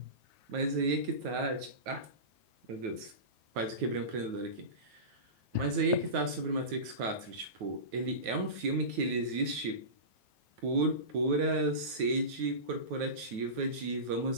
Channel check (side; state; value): left; late; 9.3 ms